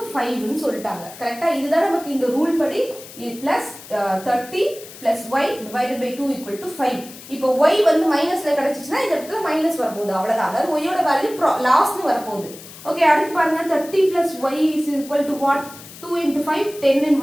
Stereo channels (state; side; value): noise; left; hiss, 17 dB below the sound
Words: 5 ன்னு சொல்லிட்டாங்க. கரெக்டா, இதுதான் நமக்கு இந்த ரூல் படி +30 plus y divided by 2 equal to 5. இப்போ y வந்து மைனஸ்ல கிடைச்சிச்சுன்னா இந்த இடத்துல மைனஸ் வரப்போகுது, அவ்வளவுதான். அதாவது y யோட வேல்யூ லாஸ்னு வரப்போகுது. ஓகே, அடுத்து பாருங்க 30 plus y is equal to what, 2 into 5 10 ன்னு